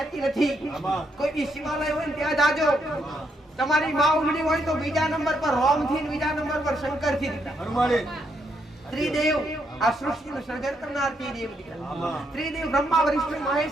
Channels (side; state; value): both; normal; correlation 0.77